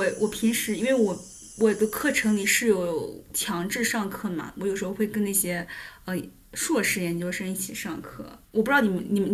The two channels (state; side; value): identical; both; correlation 1.00